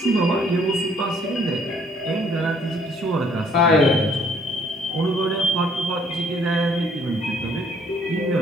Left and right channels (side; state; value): both; normal; correlation 0.63